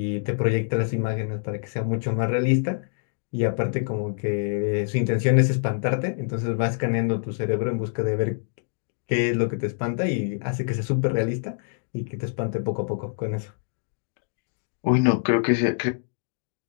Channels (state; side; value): silent; right; digital silence